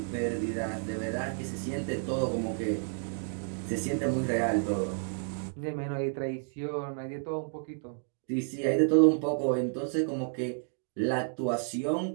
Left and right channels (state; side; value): silent; left; digital silence